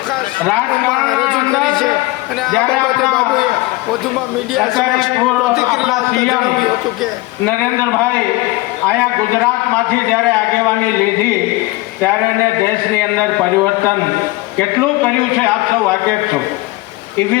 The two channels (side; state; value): right; quieter; 20.5 dB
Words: રાજકારણના નરેન્દ્રભાઈ અહીંયા ગુજરાતમાંથી જ્યારે આગેવાની લીધી ત્યારે એને દેશની અંદર પરિવર્તન કેટલું કર્યું છે આપ સૌ વાકેફ છો. એ